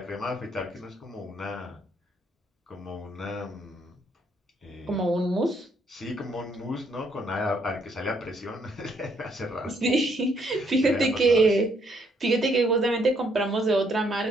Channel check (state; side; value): normal; both; correlation 0.70